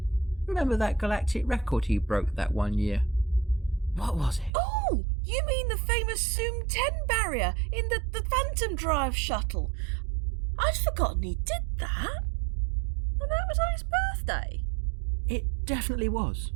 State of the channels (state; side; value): drops out; left; at 4.5 s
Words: Remember that galactic record he broke that one year? What was it? Oh, you mean the famous Zoom 10 barrier in the Phantom Drive shuttle? I'd forgotten he did that. And that was on his birthday. It definitely was.